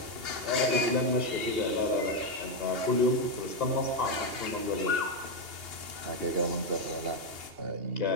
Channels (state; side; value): late; left; 2.8 ms